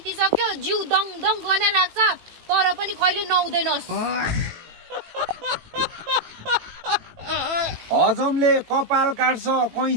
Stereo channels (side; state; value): left; late; 18 ms